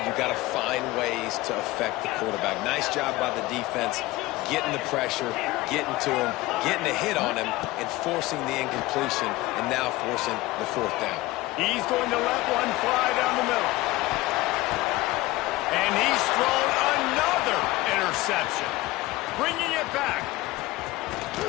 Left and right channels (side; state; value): right; quieter; 19.1 dB